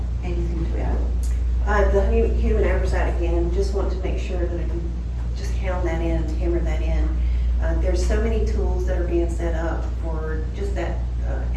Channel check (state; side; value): identical; both; correlation 1.00